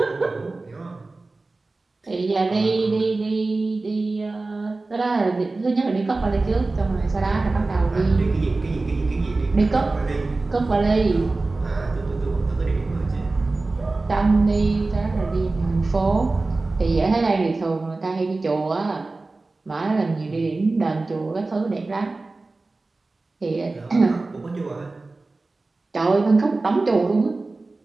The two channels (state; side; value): quieter; left; 3.4 dB